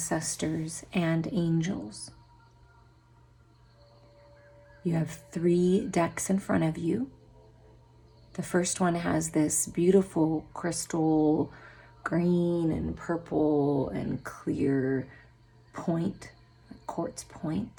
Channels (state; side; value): identical; both; correlation 1.00